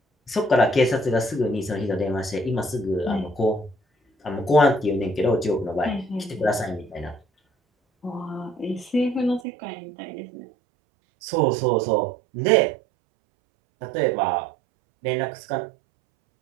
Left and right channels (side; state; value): left; drops out; at 9.4 s